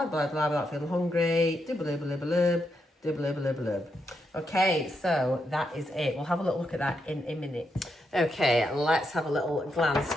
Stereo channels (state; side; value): normal; both; correlation 0.82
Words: blah, blah, without feeling hungry. Okay, so that is it. We'll have a little look at that in a minute. Okay, let's have a little glance